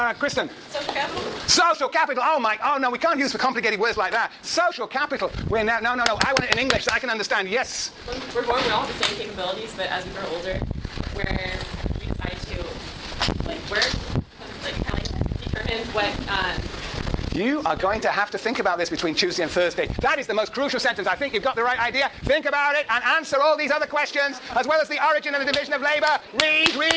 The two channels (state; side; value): identical; both; correlation 1.00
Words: Kristen. Social capital? Social capital. Oh no, we can't use for complicated words like that. Social capital. No. I want it in English so I can understand. Yes. We're born with all the same capabilities, but as we grow older, where we decide to work, kind of determine what. You are going to have to think about this between Tuesday and Thursday. That is the most crucial sentence. I think you've got the right idea. Think about it and answer all these other questions, as well as the origin and the division of labor. Read,